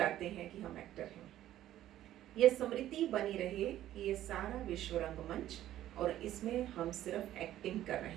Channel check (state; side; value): quieter; left; 13.0 dB